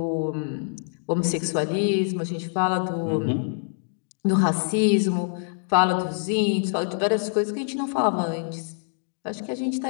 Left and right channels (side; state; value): right; silent; digital silence